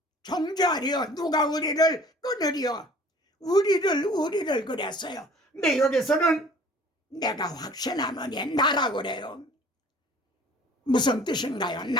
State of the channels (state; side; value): normal; both; correlation 0.50